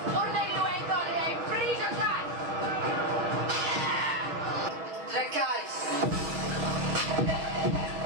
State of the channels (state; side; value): late; left; 6.3 ms